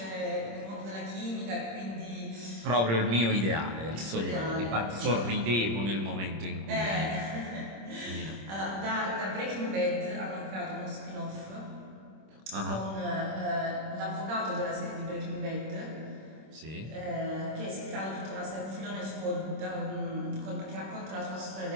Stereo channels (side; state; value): left; late; 26 ms